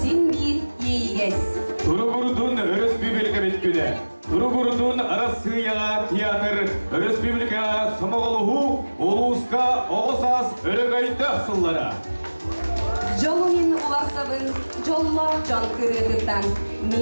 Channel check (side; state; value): both; inverted; correlation -1.00